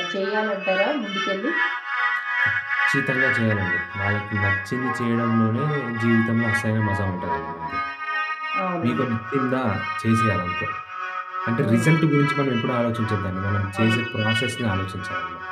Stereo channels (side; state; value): both; identical; correlation 1.00